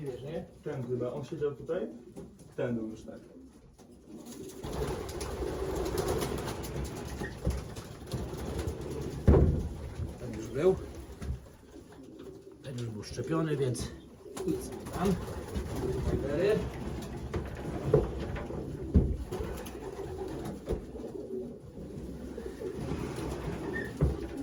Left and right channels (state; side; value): identical; both; correlation 1.00